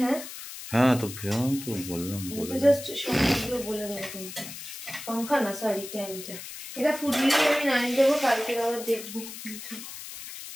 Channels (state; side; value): noise; left; hiss, 11 dB below the sound